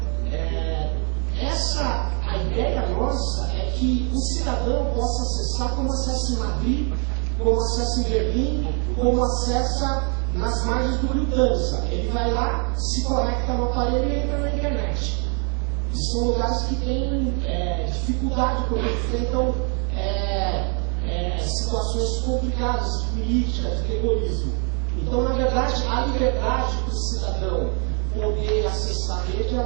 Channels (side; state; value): left; quieter; 38.6 dB